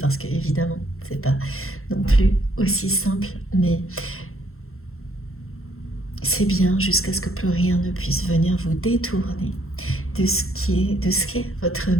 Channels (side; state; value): right; late; 0.62 ms